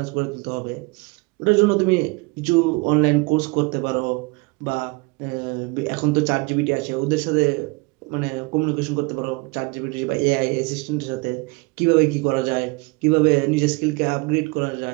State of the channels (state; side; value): quieter; left; 27.5 dB